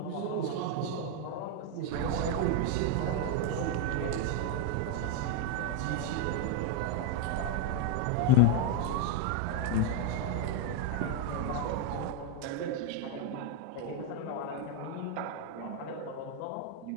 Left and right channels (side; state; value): both; different; correlation 0.01